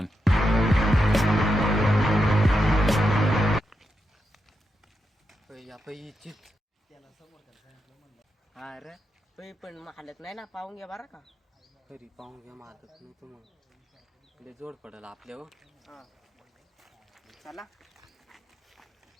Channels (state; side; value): normal; both; correlation 0.86